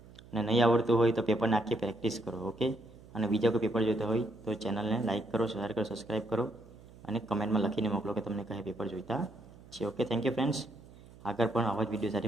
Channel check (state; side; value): noise; right; hum, 21 dB below the sound